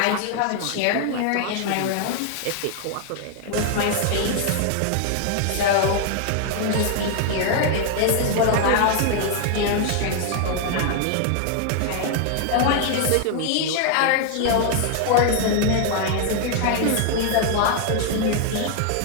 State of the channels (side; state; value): both; different; correlation 0.00